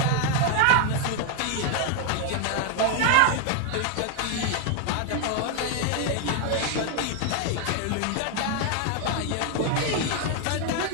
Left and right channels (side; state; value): both; different; correlation 0.01